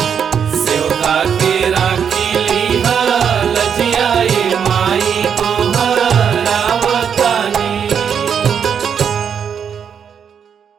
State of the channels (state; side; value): quieter; left; 7.5 dB